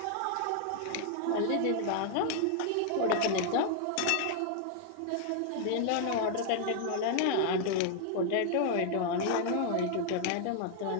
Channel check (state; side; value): different; both; correlation 0.00